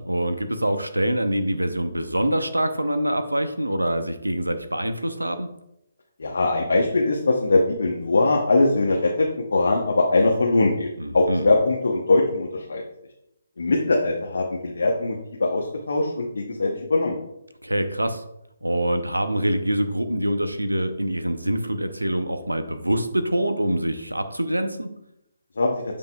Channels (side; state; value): both; inverted; correlation -0.90